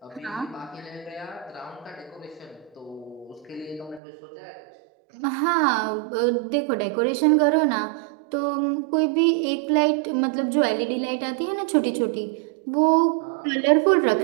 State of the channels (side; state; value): left; drops out; at 4.0 s